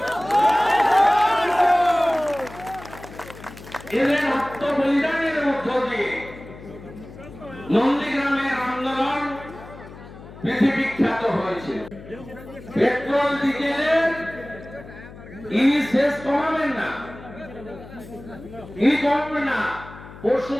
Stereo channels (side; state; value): left; noise; hum, 17 dB below the sound